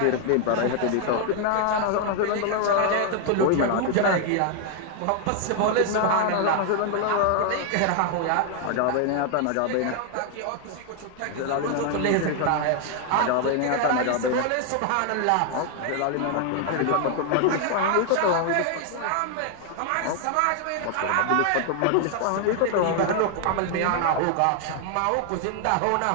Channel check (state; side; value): different; both; correlation 0.00